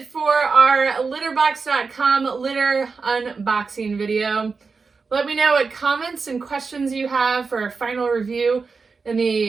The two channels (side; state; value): left; quieter; 4.7 dB